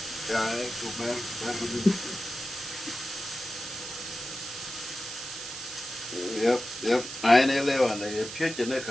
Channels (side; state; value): right; noise; hiss, 9 dB below the sound